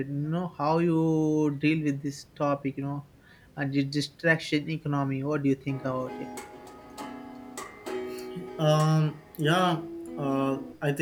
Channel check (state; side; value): identical; both; correlation 1.00